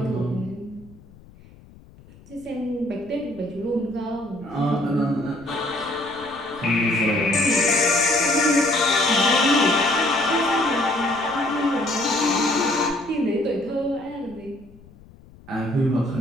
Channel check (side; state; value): left; noise; rumble, 24 dB below the sound